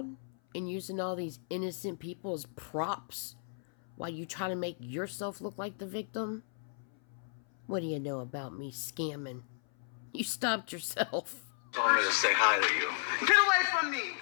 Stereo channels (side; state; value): right; silent; 55 dB below the other